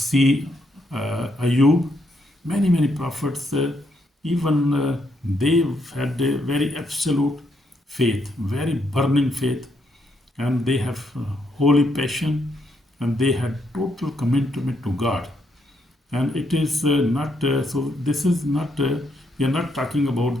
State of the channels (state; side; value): normal; both; correlation 0.76